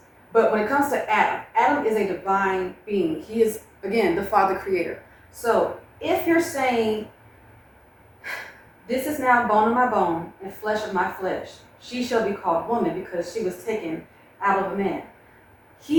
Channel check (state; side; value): identical; both; correlation 1.00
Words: But when it comes to Adam is a divine being. He is, again, the Father Creator. So if you're saying, this is now bone of my bone and flesh of my flesh, she shall be called woman because she was taken out of a man.